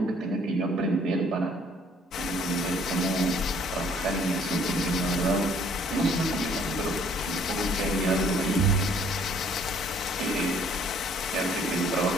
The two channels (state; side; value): normal; both; correlation 0.60